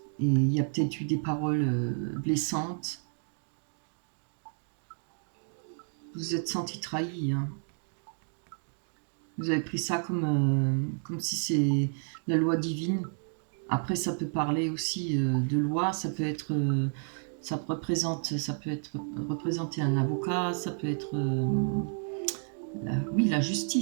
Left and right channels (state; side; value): silent; left; 57 dB below the other